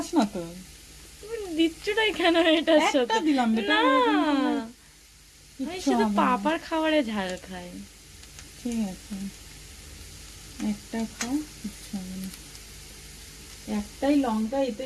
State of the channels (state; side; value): identical; both; correlation 1.00